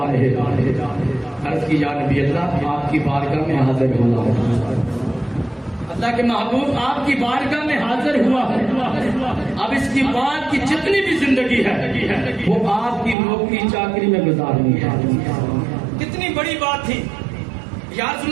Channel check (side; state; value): left; drops out; at 13.2 s